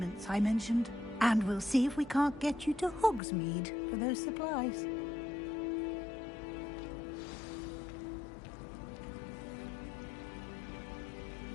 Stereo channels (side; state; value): right; drops out; at 3.2 s